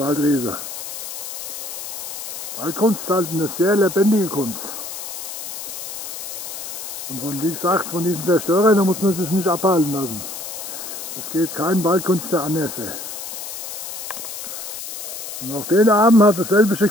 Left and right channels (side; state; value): left; noise; hiss, 8 dB below the sound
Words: Waldkunst ist halt eine sehr lebendige Kunst. Und von, wie gesagt, von diesen Zerstörern da muss man sich nicht abhalten lassen. Es geht kein Waldkünstler anders. Und auch den Abend hat dasselbe